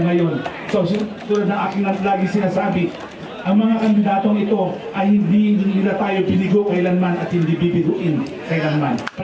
ngayon. So tulad ng aking lagi sinasabi, ang mga kandidatong ito ay hindi nila tayo binigo kailanman at hindi bibiguin kailanman.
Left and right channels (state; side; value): identical; both; correlation 1.00